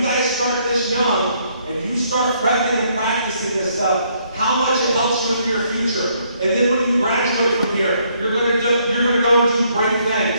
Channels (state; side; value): inverted; both; correlation -0.69